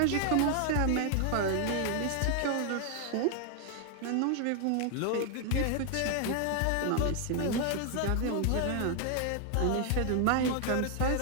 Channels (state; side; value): different; both; correlation 0.00